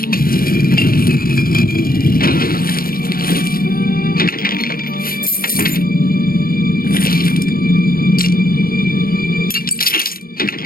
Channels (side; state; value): right; late; 0.43 ms